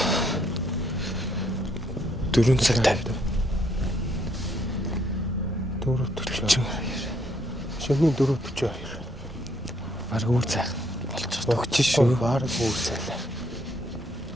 4 цаг 50. 4:42. Шөнийн 4:42. Бараг үр цаг болчихсон. Өгч шүү. Бараг үр цайлаа.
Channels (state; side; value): normal; both; correlation 0.70